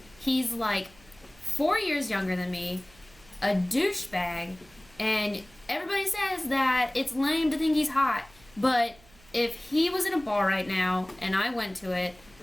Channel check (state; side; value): noise; right; hum, 27 dB below the sound